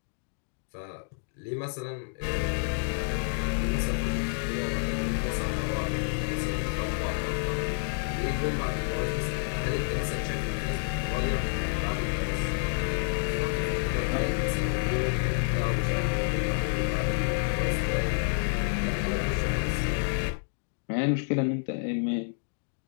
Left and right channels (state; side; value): silent; right; digital silence